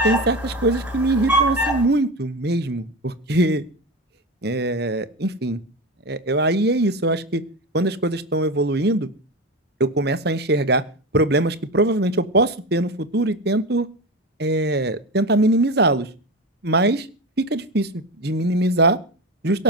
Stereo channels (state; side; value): normal; both; correlation 0.21